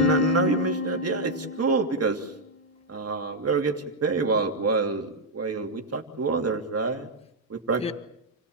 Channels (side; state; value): both; normal; correlation -0.03